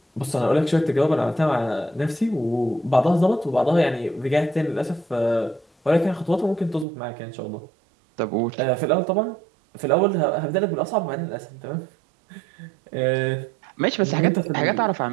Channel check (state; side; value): drops out; left; at 6.9 s